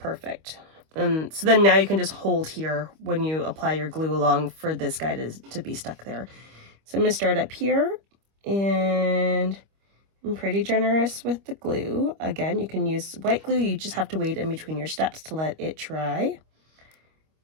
So then now you can just hold here when you apply your glue along for this guy to be stuck there. So I'm going to start up here, and I'm pretty generous with the glue. Again, you can use white glue. You just have to wait in between your steps to let it dry.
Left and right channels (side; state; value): left; late; 25 ms